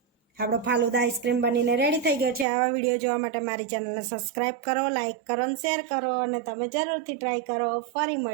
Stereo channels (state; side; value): drops out; left; at 2.5 s